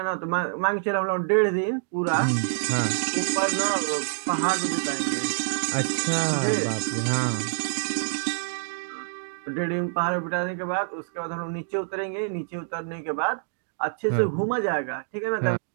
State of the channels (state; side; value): silent; left; digital silence